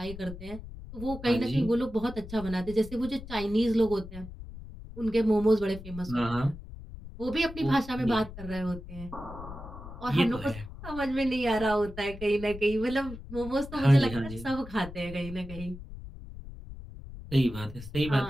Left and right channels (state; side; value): noise; left; rumble, 13 dB below the sound